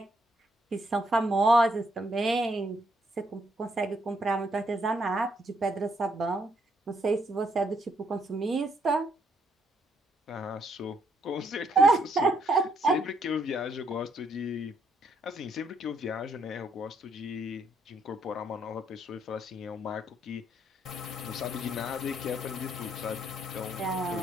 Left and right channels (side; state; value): both; normal; correlation 0.73